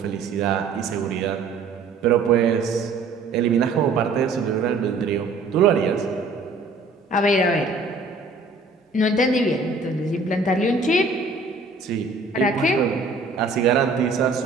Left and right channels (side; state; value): left; quieter; 3.8 dB